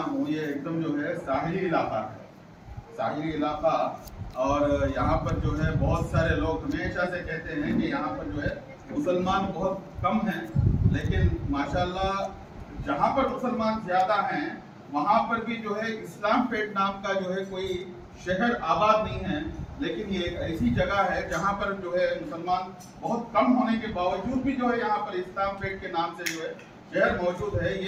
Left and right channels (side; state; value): both; identical; correlation 1.00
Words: ہوں یہ ایک دم جو ہے ساحلی علاقہ ہے، ساحلی علاقہ، اور یہاں پر جو ہے بہت سارے لوگ ہمیشہ سے کہتے ہیں کہ یہاں پر جو ہے مسلمان بہت کم ہیں، لیکن ماشاءاللہ جہاں پر مسلمان زیادہ ہیں وہاں پر بھی جو ہے اسلام پیٹ نام کا جو ہے کوئی شہر آباد نہیں ہے، لیکن یہ ایک ایسی جگہ ہے جہاں پر جو ہے مسلمان بہت کم ہونے کے باوجود بھی جو ہے یہاں پر اسلام پیٹ کے نام سے جو ہے شہر موجود ہے۔